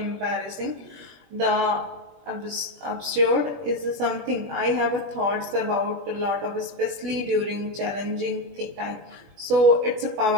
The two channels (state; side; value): late; left; 20 ms